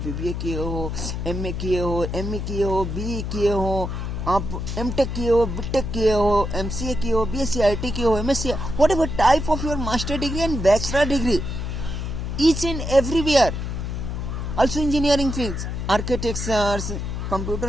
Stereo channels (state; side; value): noise; left; hum, 4 dB below the sound